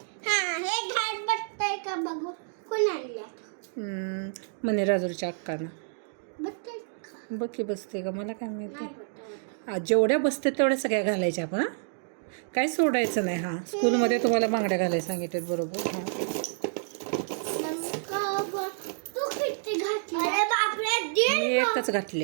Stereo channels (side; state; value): left; silent; digital silence